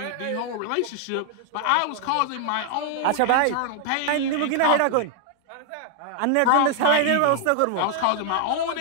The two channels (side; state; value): both; different; correlation 0.00